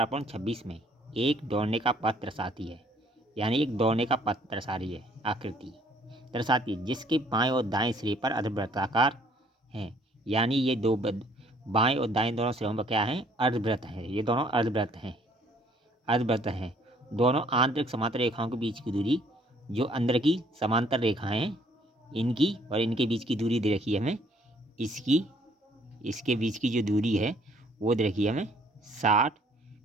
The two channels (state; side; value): normal; both; correlation 0.61